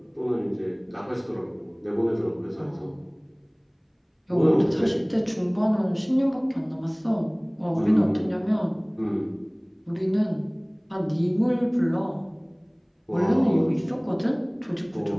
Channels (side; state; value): both; identical; correlation 1.00